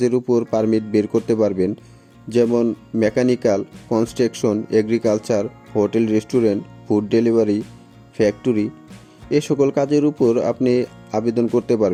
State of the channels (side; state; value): both; identical; correlation 1.00